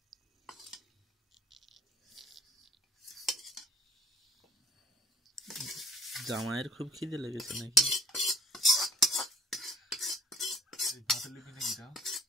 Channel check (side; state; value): both; normal; correlation 0.55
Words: জামাইয়ের খুব খিদে লেগেছে নাকি?